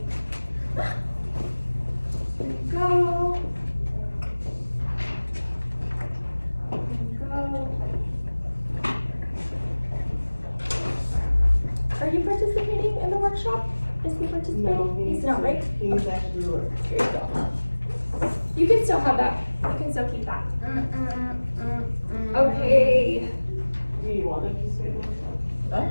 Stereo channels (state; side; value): inverted; both; correlation -1.00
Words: Go. Go. Are you participating in the workshop? Is he participating? No, He's not, right? He's actually work. Here you go. You can still have that. You can still keep that. Okay. Do you want it to say that? Huh?